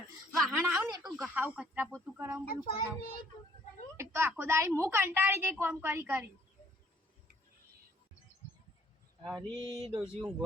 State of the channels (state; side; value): normal; both; correlation 0.62